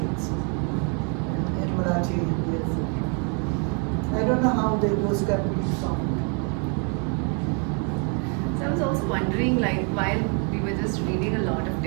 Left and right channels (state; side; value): quieter; left; 38.3 dB